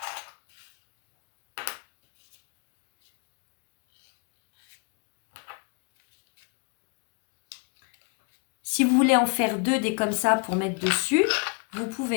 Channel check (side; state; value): right; quieter; 35.6 dB